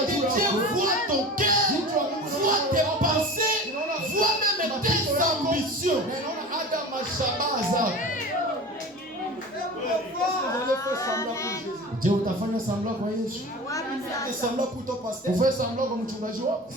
lilikuwa juu Dieu yako. voit ton cœur, voit tes pensées, voit même tes ambitions. Na inaona hata mashabaha zako. Je, utafanya sambla kwa Yesu? Et semblant pour ton pasteur. Ufanye sambla kwa mchungaji wako?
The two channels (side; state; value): both; normal; correlation 0.35